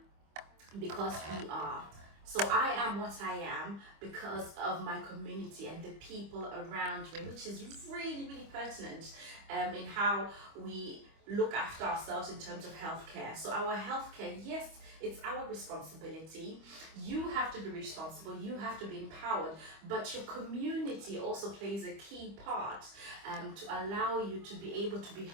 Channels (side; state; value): left; late; 25 ms